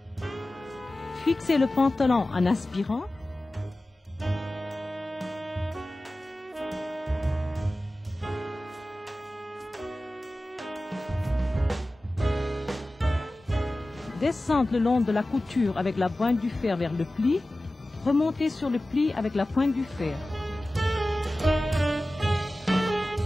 Fixez le pantalon en aspirant. Descendre le long de la couture avec la pointe du fer vers le pli. Remonter sur le pli avec la pointe du fer.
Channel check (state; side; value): normal; both; correlation 0.96